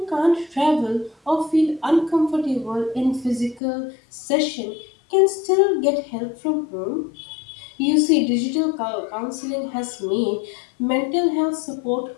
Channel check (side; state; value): right; drops out; at 3.6 s